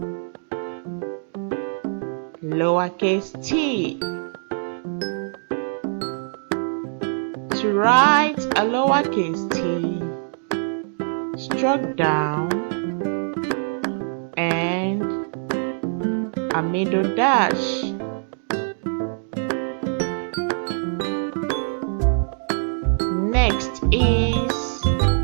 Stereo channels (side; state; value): left; silent; 63 dB below the other